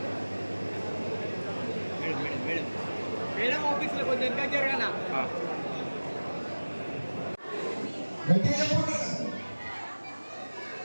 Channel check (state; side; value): inverted; both; correlation -1.00